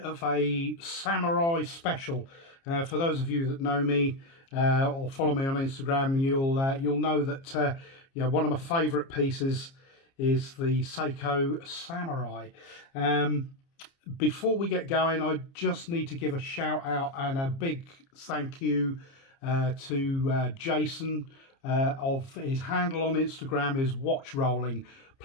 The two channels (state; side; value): late; right; 30 ms